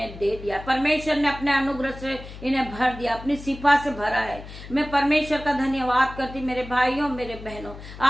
दे दिया, परमेश्वर ने अपने अनुग्रह से इन्हें भर दिया, अपनी सिफा से भरा है। मैं परमेश्वर का धन्यवाद करती मेरे भाइयों मेरे बहनों,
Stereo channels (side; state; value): left; noise; hum, 14 dB below the sound